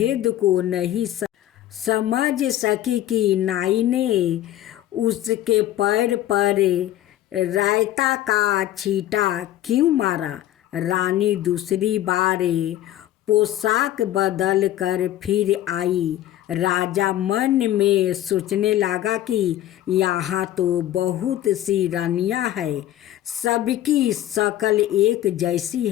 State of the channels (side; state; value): right; quieter; 13.4 dB